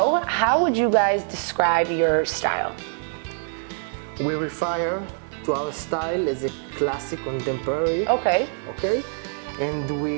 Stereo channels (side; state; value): left; silent; digital silence